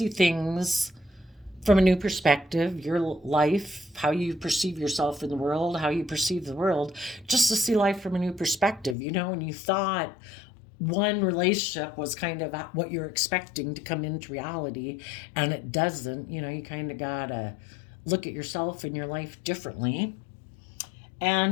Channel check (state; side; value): drops out; right; at 9.0 s